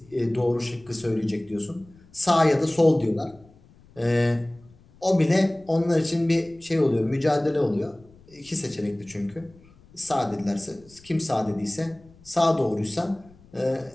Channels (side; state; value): left; noise; rumble, 26 dB below the sound